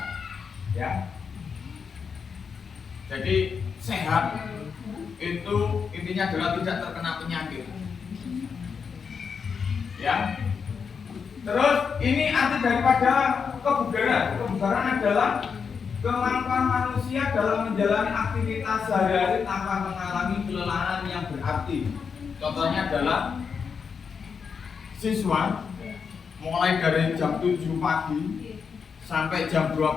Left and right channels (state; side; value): quieter; right; 6.1 dB